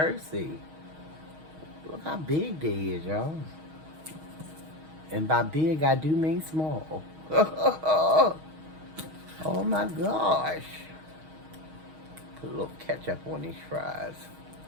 Look how big they is, y'all. And by big, I do mean small. Oh my gosh. Put a little ketchup on these fries.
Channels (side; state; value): left; late; 6.4 ms